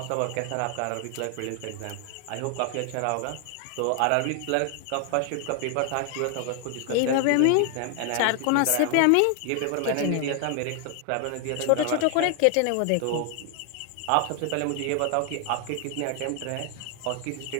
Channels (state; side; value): different; both; correlation 0.00